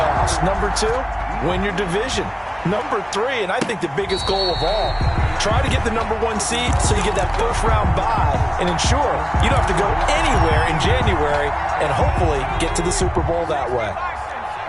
Number 2, win your division. Number 3, and I think the biggest goal of all, Try to get the #1 seed so you get that first-round bye and ensure you don't have to go anywhere in January and hopefully get to the Super Bowl that way.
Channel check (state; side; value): identical; both; correlation 1.00